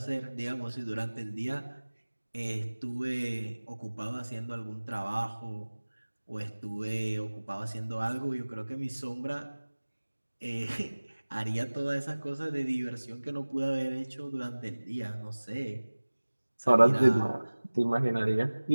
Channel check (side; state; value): both; inverted; correlation -1.00